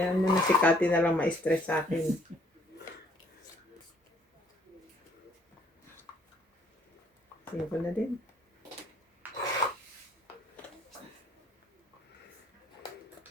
mo na si Cathy na lang ma-stress sa akin. Tingin ko na din.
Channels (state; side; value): normal; both; correlation 0.61